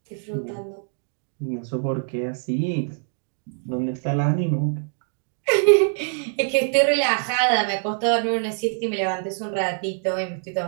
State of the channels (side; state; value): left; silent; 62 dB below the other